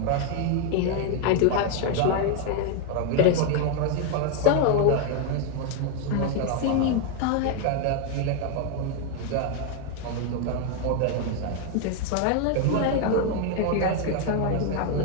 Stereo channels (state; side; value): different; both; correlation 0.01